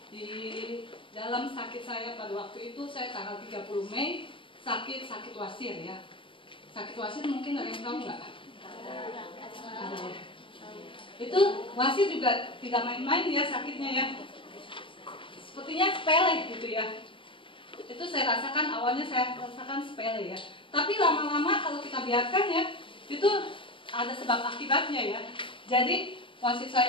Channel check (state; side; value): late; right; 0.25 ms